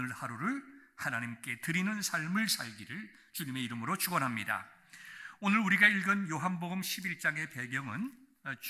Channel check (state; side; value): identical; both; correlation 1.00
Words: 하루를 하나님께 드리는 삶을 살기를 주님의 이름으로 축원합니다. 오늘 우리가 읽은 요한복음 11장의 배경은